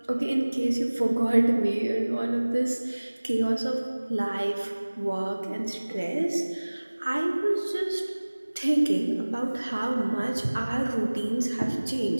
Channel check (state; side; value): inverted; both; correlation -1.00